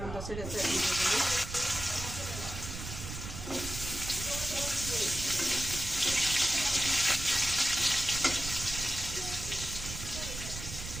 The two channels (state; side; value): noise; right; rumble, 8 dB below the sound